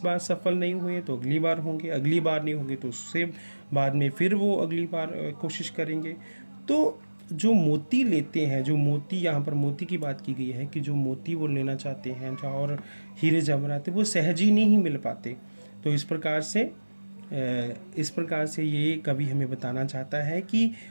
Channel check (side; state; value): both; inverted; correlation -1.00